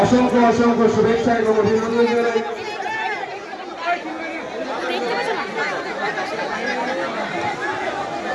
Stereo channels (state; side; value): identical; both; correlation 1.00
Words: অসংখ্য অসংখ্য শুভেচ্ছা এবং অভিনন্দন জানাই।